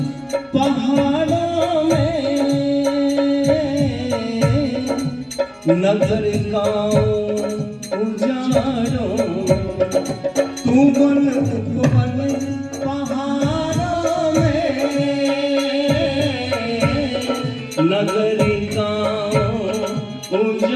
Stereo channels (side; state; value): both; identical; correlation 1.00